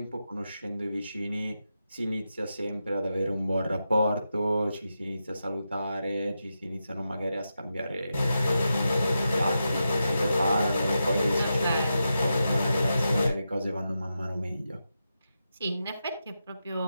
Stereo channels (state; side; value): inverted; both; correlation -0.88